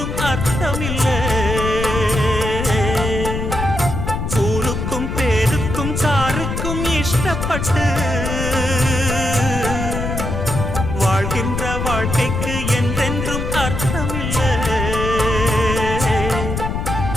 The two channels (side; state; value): left; noise; rumble, 3 dB below the sound